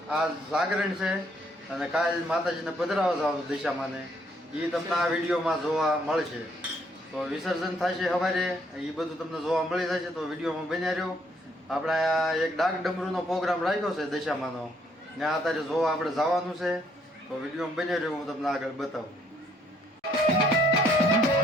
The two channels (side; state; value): both; normal; correlation 0.67